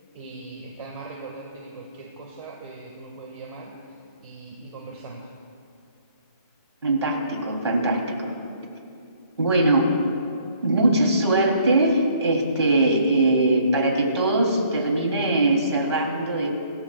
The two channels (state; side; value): inverted; both; correlation -0.62